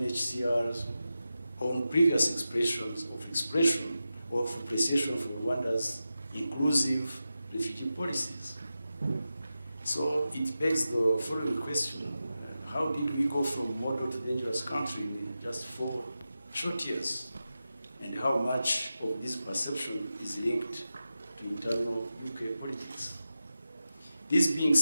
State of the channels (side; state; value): both; inverted; correlation -0.92